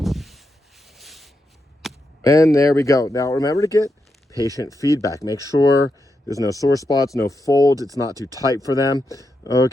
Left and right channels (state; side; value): normal; both; correlation 0.85